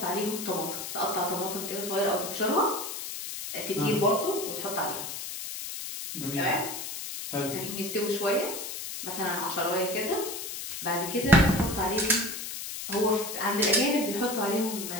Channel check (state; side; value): noise; left; hiss, 7 dB below the sound